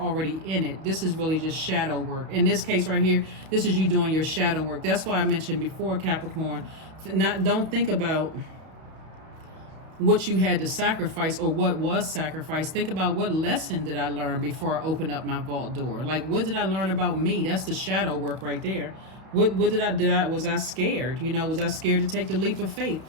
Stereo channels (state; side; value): late; left; 32 ms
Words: in it. This is really just shadow work. In this case right here, this is you doing your shadow work. That's why I mentioned before, Capricorn, don't think about what you had to sacrifice or what was sacrificed. Think about, what lesson did I learn before I opened up my vault door? Like, what did I learn about me? That's the shadow work right there. What was I scared? You know, was I scared to take the leap of faith?